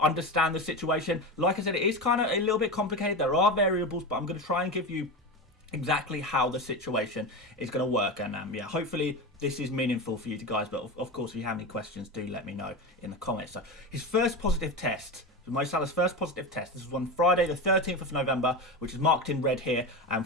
the situation. Like I said, it is kind of a little bit complicated. There are variables, but I'm going to try and give you exactly how the situation is going to work, and hopefully this is meaningful for you guys. But of course, if you have any questions, do let me know in the comments. So his first positive test, Mo Salah's first positive test, this was on Friday the 13th of November, which is marked in red here.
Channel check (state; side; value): normal; both; correlation 0.22